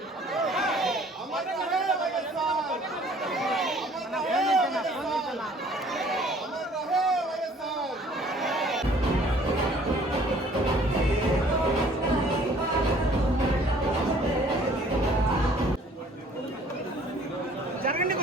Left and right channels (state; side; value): normal; both; correlation 0.55